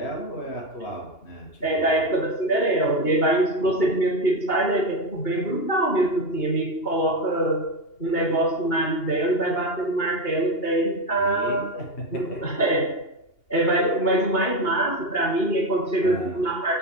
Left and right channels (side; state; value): right; late; 2.8 ms